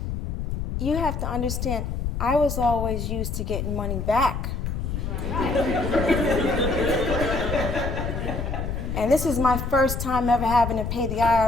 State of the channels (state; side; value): noise; left; rumble, 3 dB below the sound